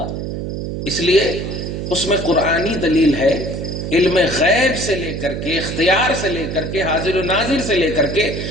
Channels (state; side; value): noise; right; hum, 5 dB below the sound